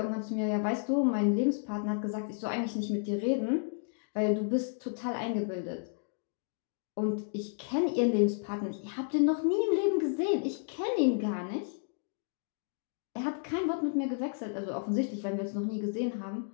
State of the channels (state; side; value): silent; right; digital silence